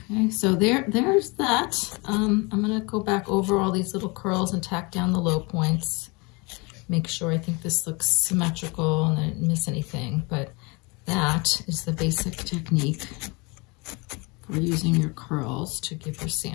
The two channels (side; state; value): right; quieter; 28.0 dB